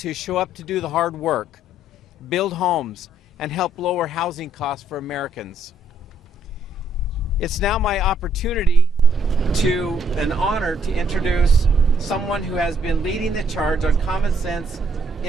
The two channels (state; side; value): normal; both; correlation 0.69